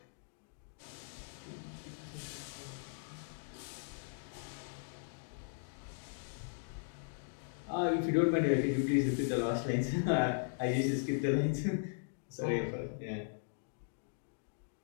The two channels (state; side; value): silent; right; digital silence